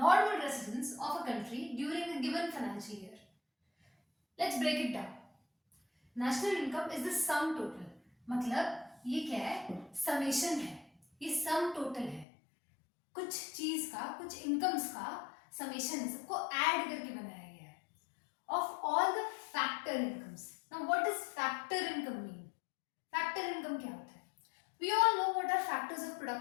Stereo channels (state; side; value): drops out; right; at 12.2 s